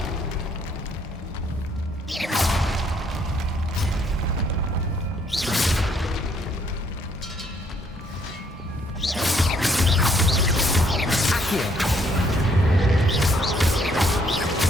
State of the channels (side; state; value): both; normal; correlation 0.67